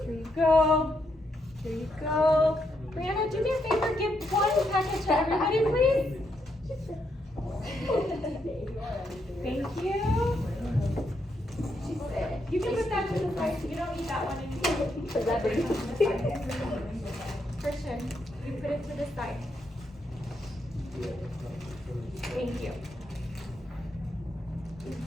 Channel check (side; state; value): both; normal; correlation 0.79